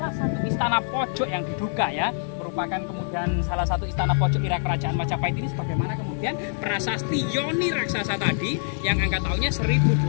satu istana pojok yang diduga ya merupakan kemudian salah satu istana pojok era kerajaan Majapahit ini, sebagaimana kemudian prasasti Yoni Raksasa tadi yang angka tahunnya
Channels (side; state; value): right; silent; 57 dB below the other